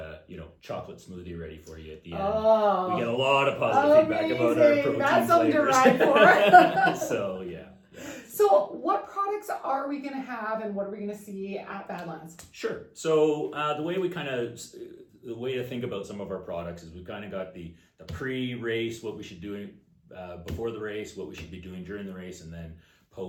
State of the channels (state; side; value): identical; both; correlation 1.00